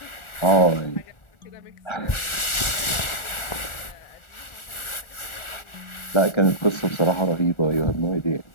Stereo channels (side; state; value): right; late; 1.4 ms